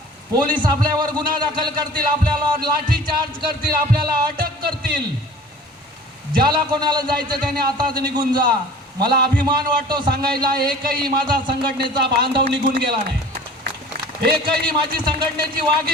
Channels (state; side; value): normal; both; correlation 0.45